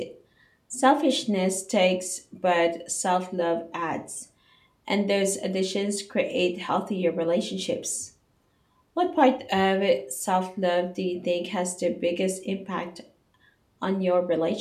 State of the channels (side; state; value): both; identical; correlation 1.00